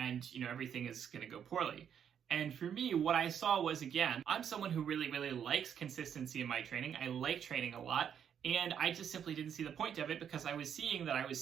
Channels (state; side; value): quieter; left; 8.5 dB